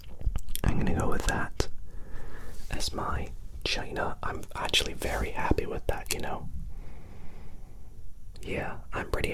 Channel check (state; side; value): identical; both; correlation 1.00